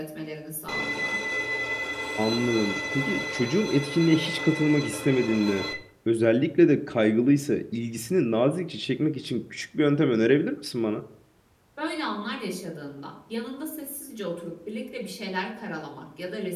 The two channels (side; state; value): both; identical; correlation 1.00